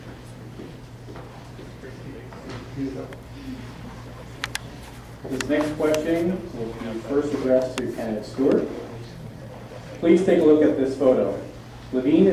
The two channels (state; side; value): identical; both; correlation 1.00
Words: This next question will be first addressed to candidate Stewart. Please take a look at this photo. Levine